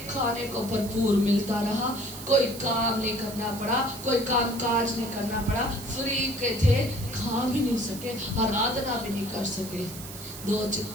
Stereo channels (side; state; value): right; noise; hiss, 12 dB below the sound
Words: खाने को भरपूर मिलता रहा, कोई काम नहीं करना पड़ा, कोई काम काज नहीं करना पड़ा, फ्री के थे, खा भी नहीं सके, आराधना भी नहीं कर सके। दो